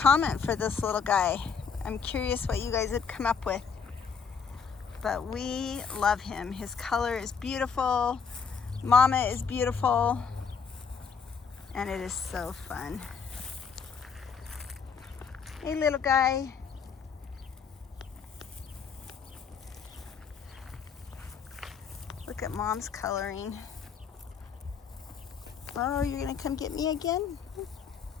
for this little guy. I'm curious what you guys would come up with. But we love him. His color is beautiful. Mama is beautiful. And it is so fun. Hey, little guy. Look at Mom's coloring. Oh, you're gonna come get me again?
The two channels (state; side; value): quieter; right; 6.1 dB